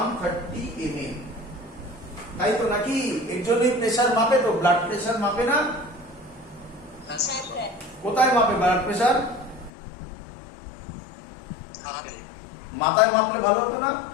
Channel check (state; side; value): drops out; right; at 9.7 s